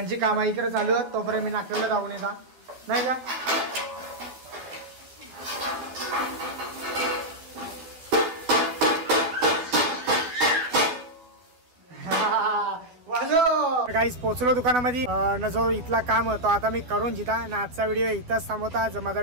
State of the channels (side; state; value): left; late; 12 ms